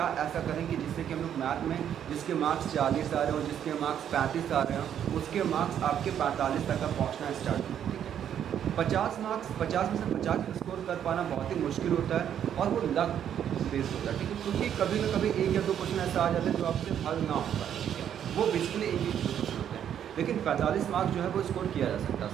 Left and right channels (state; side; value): quieter; left; 9.5 dB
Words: ऐसा करेंगे जिससे कि हम लोग मैथ में जिसके मार्क्स 40 आ रहे हो, जिसके मार्क्स 35 आ रहे हो, उसके मार्क्स आपके 45 तक का पहुंचना स्टार्ट हो। ठीक है, 50 मार्क्स 50 में से 50 स्कोर कर पाना बहुत ही मुश्किल होता है और वो लक बेस्ड होता है। ठीक है, क्योंकि कभी ना कभी 1 या 2 क्वेश्चन ऐसा आ जाता है जो आपसे हल ना होता है। ठीक है, वो बेसिकली एक ही क्वेश्चन होते हैं, लेकिन 45 मार्क्स जो है वो स्कोर किया जा सकता है